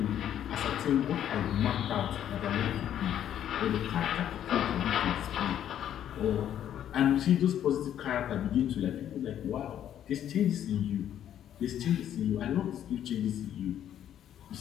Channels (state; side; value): quieter; right; 10.5 dB